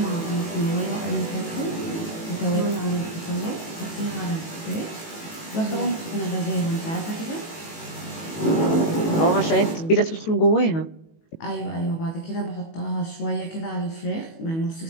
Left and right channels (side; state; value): right; late; 18 ms